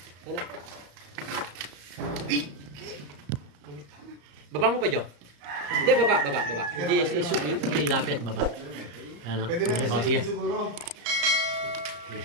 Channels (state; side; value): late; left; 34 ms